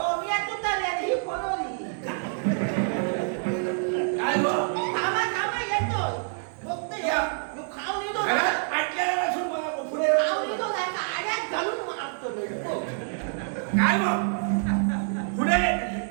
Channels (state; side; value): silent; left; digital silence